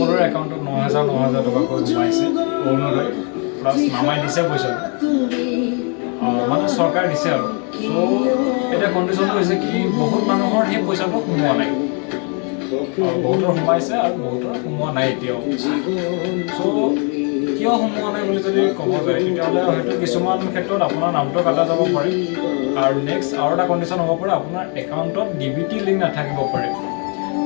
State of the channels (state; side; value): quieter; right; 37.6 dB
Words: একাউণ্টত 9,000 টকাকৈ সোমাইছে। অৰুণোদয় প্লাছ নামাই দিছে পইচা, মানে চৰকাৰে দিছে আৰু। এতিয়া কণ্ডিশ্যনটো হৈছে কি, বহুত মানুহৰ সেই পইচাটো সোমোৱা নাই, বহুতৰ সোমাইছে আৰু বহুতৰ সোমোৱা নাই এতিয়াও। কিয় সোমোৱা নাই বুলি যদি ক'ব যায়, তেতিয়াহ'লে হয়তো কিছুমান ক্ষেত্ৰত আপোনাৰ নামটো কাটা যাব পাৰে, আৰু নেক্সট আৰু এটা কণ্ডিশ্যন হ'ব পাৰে, আপোনাৰ একাউণ্টত DBT লিংক নাথাকিব পাৰে।